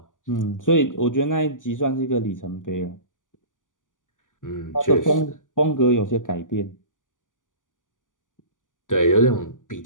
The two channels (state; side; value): late; right; 0.88 ms